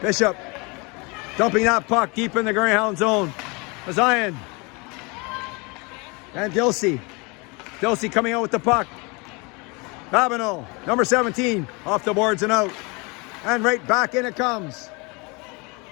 dumping that puck deep in the Greyhound zone. Bazayan. And Dilsey. Dilsey coming out with the puck. Babineau, number 17, off the boards and out. And right back in it comes.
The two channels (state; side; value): quieter; right; 28.6 dB